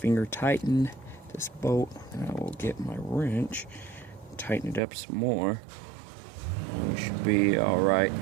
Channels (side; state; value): left; drops out; at 4.8 s